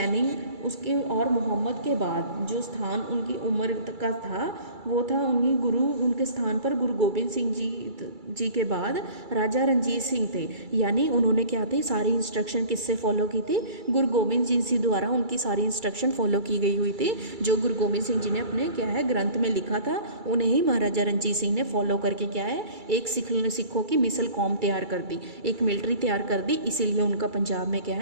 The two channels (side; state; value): left; late; 2.3 ms